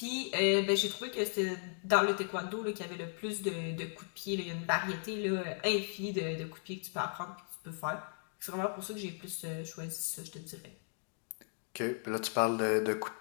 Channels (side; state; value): right; silent; 54 dB below the other